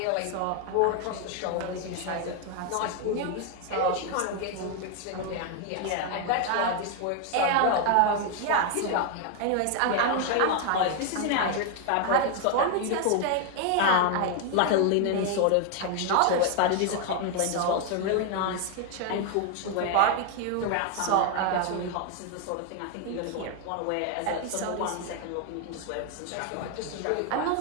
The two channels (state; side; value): different; both; correlation 0.01